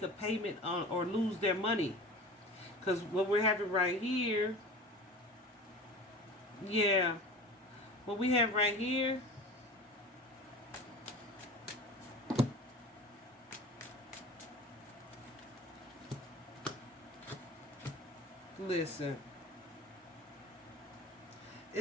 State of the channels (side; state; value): both; normal; correlation 0.36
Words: a payment on, or lose their money. Because what we're having right here, yeah, what we have right here, listen,